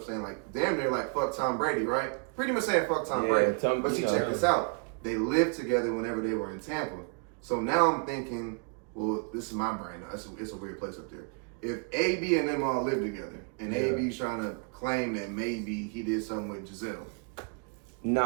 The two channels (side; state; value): left; quieter; 37.3 dB